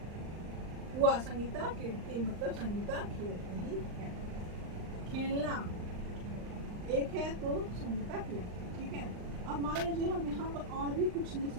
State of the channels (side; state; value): left; late; 39 ms